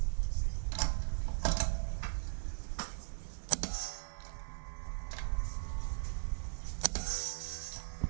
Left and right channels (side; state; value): left; silent; digital silence